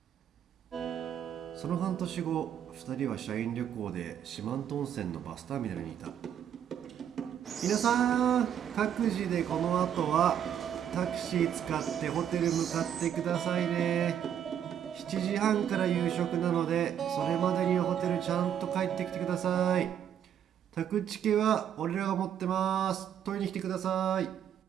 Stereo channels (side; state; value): left; quieter; 9.4 dB